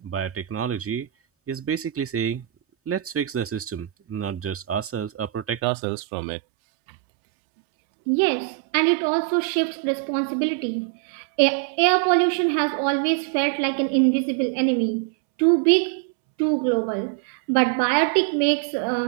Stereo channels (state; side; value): drops out; left; at 5.7 s